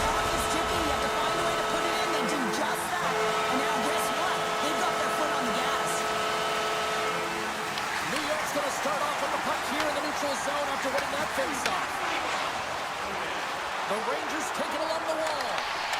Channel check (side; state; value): both; identical; correlation 1.00